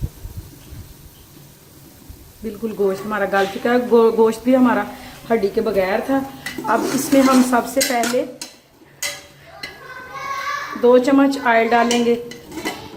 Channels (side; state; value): both; identical; correlation 1.00